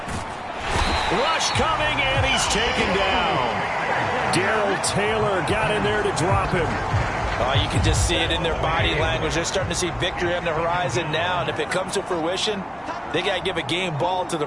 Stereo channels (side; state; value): both; identical; correlation 1.00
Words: Rush coming, and he's taken down. Darrell Taylor got in there to drop him. You can just see it in their body language. They're starting to see victory on the horizon now, and if it comes to fruition, they got to give a game ball to the